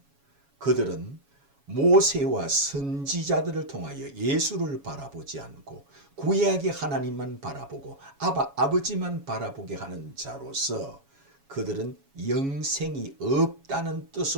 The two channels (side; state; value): left; late; 7.2 ms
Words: 그들은 모세와 선지자들을 통하여 예수를 바라보지 않고 구약의 하나님만 바라보고 아버지만 바라보게 하는 자로서 그들은 영생이 없다는